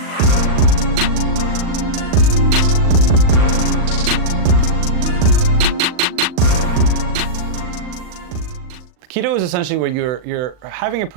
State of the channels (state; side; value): late; left; 39 ms